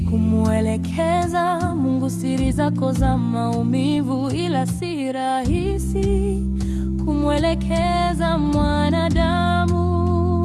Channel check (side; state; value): both; identical; correlation 1.00